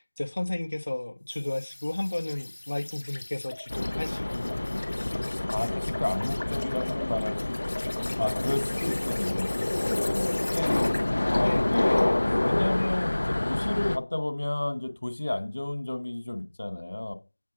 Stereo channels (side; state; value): both; inverted; correlation -1.00